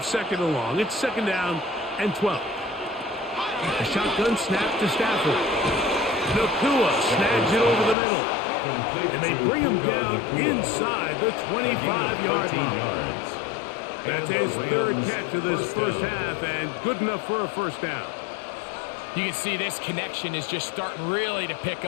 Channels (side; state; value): right; drops out; at 8.0 s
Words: second and long. It's second down and 12. A shotgun snap to Stafford. Nakua snags it over the middle. And they bring him down inside the 25-yard line. That's his third catch of this first half, and good enough for a first down. You can see this connection is just starting really to pick